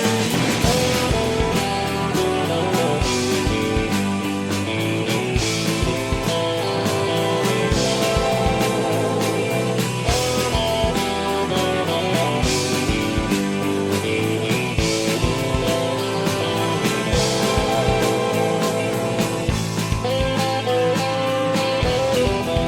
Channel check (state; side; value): identical; both; correlation 1.00